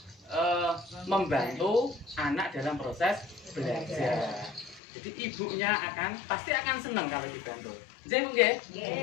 membantu anak dalam proses belajar. Jadi ibunya pasti akan senang kalau dibantu. Jadi Bu nggih?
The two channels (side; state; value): right; drops out; at 4.8 s